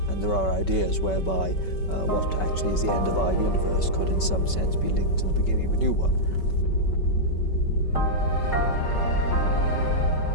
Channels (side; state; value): right; late; 5.3 ms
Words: And there are ideas whereby what actually is the end of our universe could in some sense be linked to the beginning of a new one.